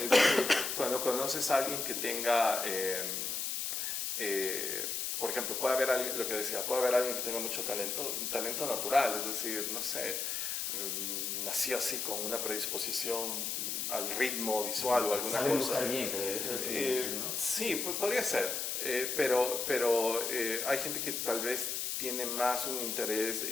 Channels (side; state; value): left; noise; hiss, 1 dB below the sound